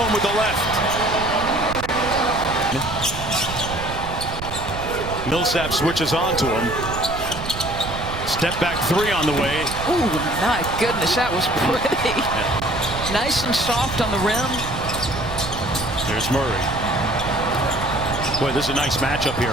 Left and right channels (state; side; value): noise; right; rumble, 9 dB below the sound